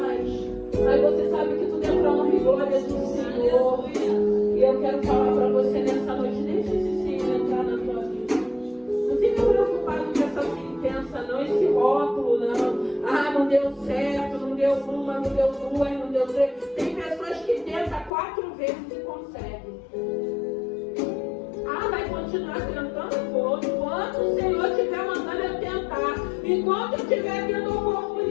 aí você sabe que tudo é para honra e glória do Senhor. E eu quero falar para você nessa noite, deixa esse Senhor entrar na tua vida. Não fica preocupado com essa sentença, não, esse rótulo, não. Não deu certo, não deu uma, não deu duas, não deu três. Tem pessoas que tentam 4 vezes e conseguem. Vai continuar tentando? Vou. Enquanto o Senhor estiver mandando eu tentar, enquanto eu estiver tendo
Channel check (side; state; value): right; drops out; at 18.1 s